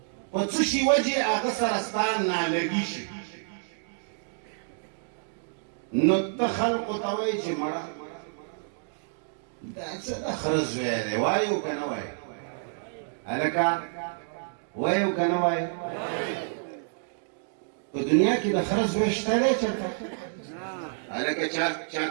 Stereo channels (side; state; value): left; silent; digital silence